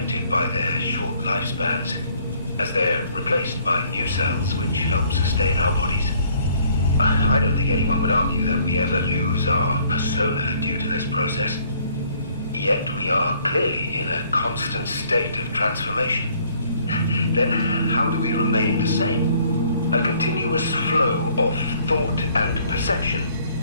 by their short lifespans, as they're replaced by new cells which help sustain our bodies. I don't think anyone would argue that we ever lose our persona due to this process. Yet we are clearly in a constant state of transformation. Then how do we remain the same? A continuous flow of thought and perception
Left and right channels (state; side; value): inverted; both; correlation -0.61